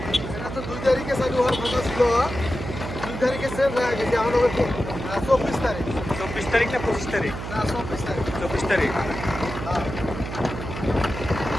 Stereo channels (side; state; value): right; noise; hum, 7 dB below the sound